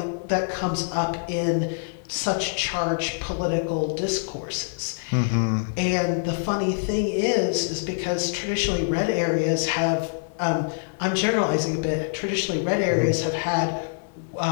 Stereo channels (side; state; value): right; silent; digital silence